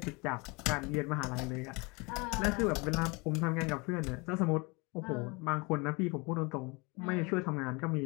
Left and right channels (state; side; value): quieter; right; 27.9 dB